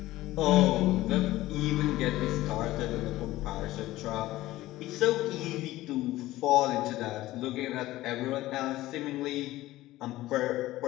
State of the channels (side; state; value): right; quieter; 16.6 dB